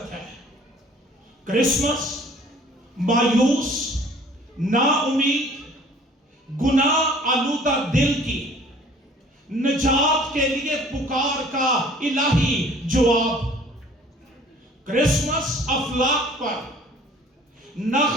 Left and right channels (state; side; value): normal; both; correlation 0.52